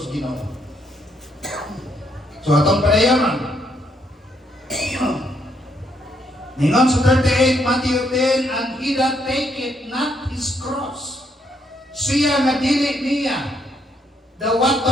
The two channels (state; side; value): normal; both; correlation 0.73